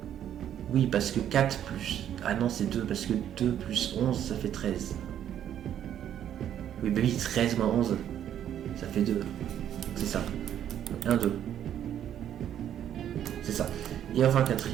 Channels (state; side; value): quieter; left; 10.3 dB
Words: Oui, parce que 4 plus... Ah non, c'est 2, parce que 2 plus 11, ça fait 13. Oui, bah oui, 13 moins 11, ça fait 2. C'est ça. 1, 2. C'est ça. Et enfin,